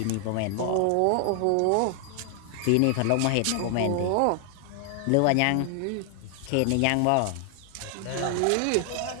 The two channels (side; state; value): both; different; correlation 0.00